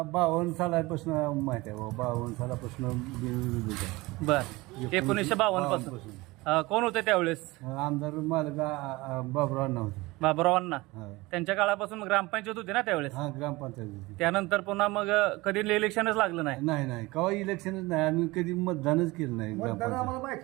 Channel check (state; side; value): quieter; left; 21.7 dB